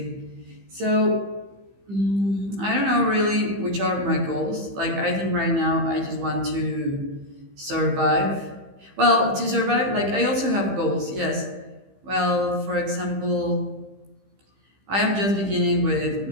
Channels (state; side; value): late; left; 15 ms